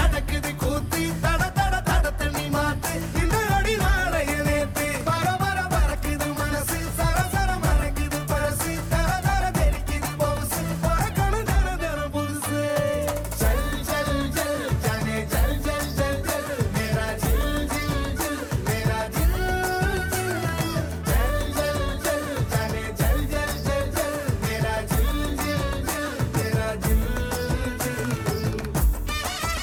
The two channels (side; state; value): both; identical; correlation 1.00